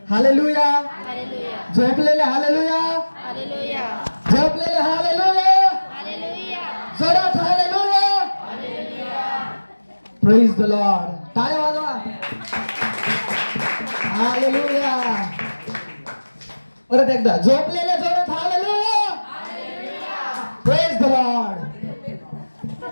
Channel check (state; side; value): inverted; both; correlation -1.00